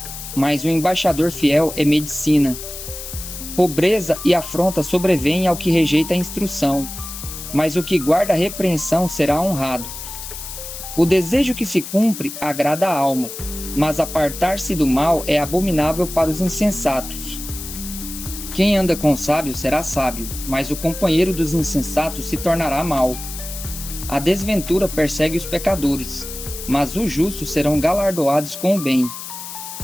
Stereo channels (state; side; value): noise; left; hiss, 10 dB below the sound